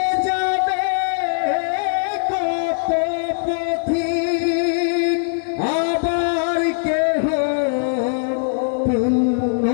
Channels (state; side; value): silent; right; 65 dB below the other